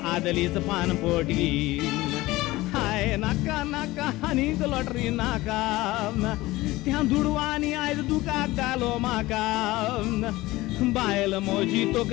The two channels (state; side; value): quieter; right; 18.9 dB